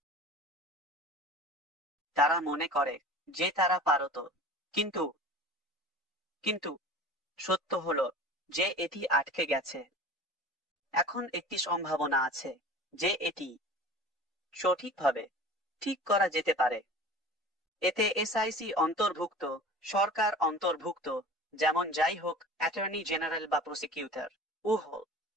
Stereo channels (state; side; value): normal; both; correlation 0.39